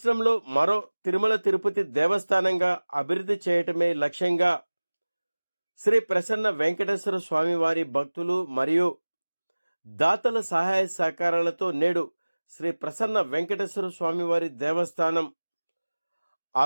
మరో తిరుమల తిరుపతి దేవస్థానంగా అభివృద్ధి చేయటమే లక్ష్యంగా శ్రీ ప్రసన్న వెంకటేశ్వర స్వామివారి భక్తులు మరియు దాతల సహాయ సహకారాలతో నేడు శ్రీ ప్రసన్న వెంకటేశ్వర స్వామివారి దేవస్థానం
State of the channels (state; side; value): inverted; both; correlation -1.00